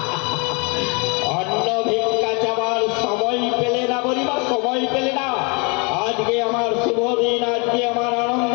অন্ন ভিক্ষা চাওয়ার সময় পেলে না মণিমা, সময় পেলে না। আজকে আমার শুভ দিন, আজকে আমার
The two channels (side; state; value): right; quieter; 31.9 dB